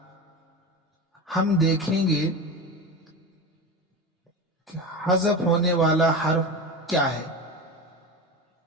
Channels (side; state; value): both; normal; correlation 0.25